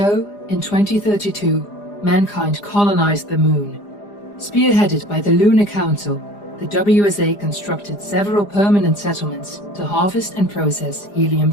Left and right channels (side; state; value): right; late; 4.9 ms